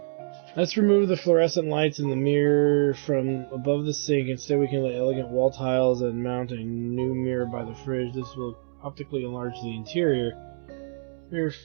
Let's remove the fluorescent lights in the mirror from above the sink. Instead, we can lay elegant wall tiles and mount a new mirror by the fridge. This will optically enlarge the interior. Mirror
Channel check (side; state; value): left; silent; digital silence